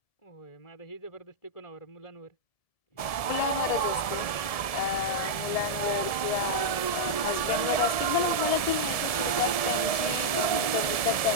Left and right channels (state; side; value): late; right; 1.7 ms